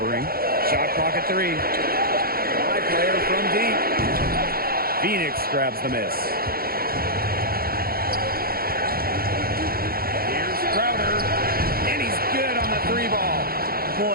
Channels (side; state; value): left; late; 0.44 ms